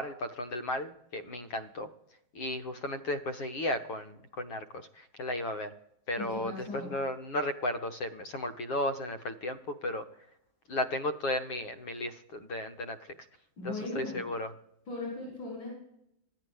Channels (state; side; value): late; right; 8.3 ms